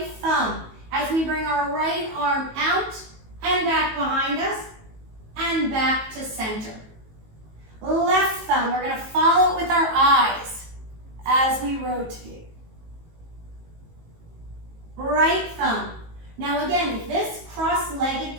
thumb as we bring our right arm out and back behind us. And back to center. Left thumb, we're going to follow it with our eyes as we rotate. Right thumb. Now again, if this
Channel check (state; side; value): late; left; 19 ms